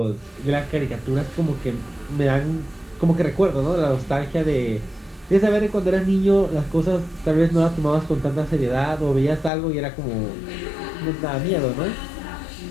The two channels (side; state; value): right; drops out; at 9.5 s